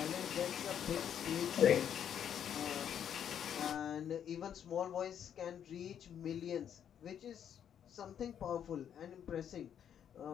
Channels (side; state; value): right; quieter; 9.0 dB